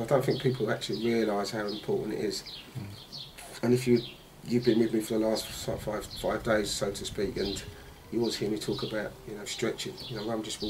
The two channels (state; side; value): identical; both; correlation 1.00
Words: don't think people actually realise how important it is. And if you've been with me for the last five days, so to speak, and you always hear me talk about, you know, stretching. You know, I'm just